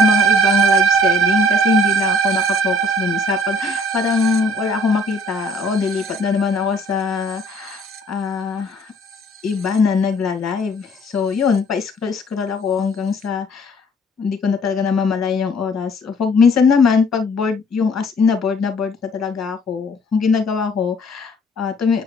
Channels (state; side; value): normal; both; correlation 0.57